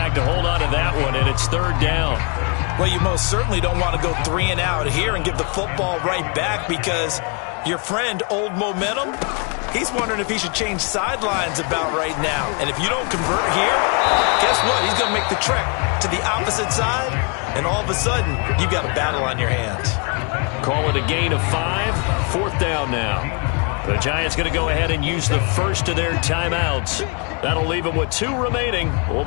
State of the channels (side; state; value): right; quieter; 35.5 dB